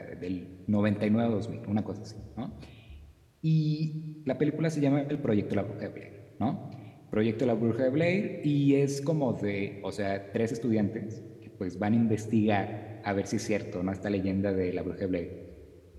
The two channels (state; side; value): identical; both; correlation 1.00